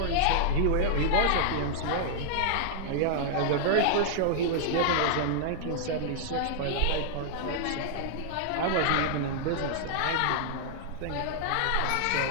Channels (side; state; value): both; different; correlation -0.01